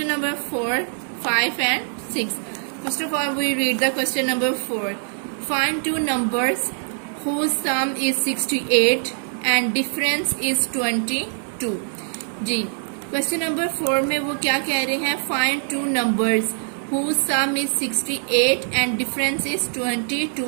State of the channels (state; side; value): silent; left; digital silence